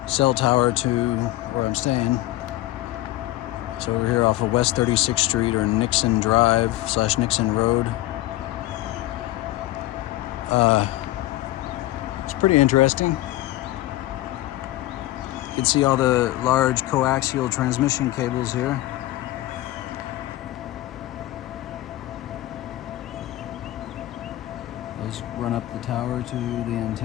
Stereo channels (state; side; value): quieter; right; 16.5 dB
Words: tower to where I'm staying. So we're here off of West 36th Street or Nixon Drive / Nixon Road. It's pretty interesting. You can see all the large coaxial transmission cables here. Those run up the tower to the